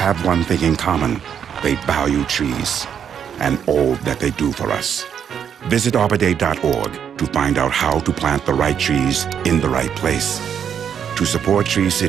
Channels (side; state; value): left; quieter; 8.2 dB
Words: one thing in common. They value trees and all that they do for us. Visit arborday.org to find out how to plant the right trees in the right place. To support Tree